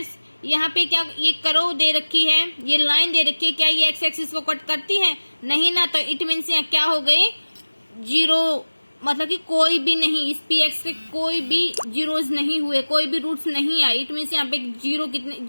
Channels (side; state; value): both; inverted; correlation -1.00